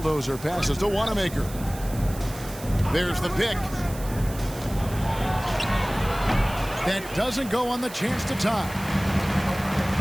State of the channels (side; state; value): right; noise; hiss, 15 dB below the sound